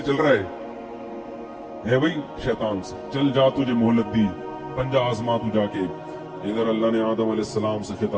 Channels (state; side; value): identical; both; correlation 1.00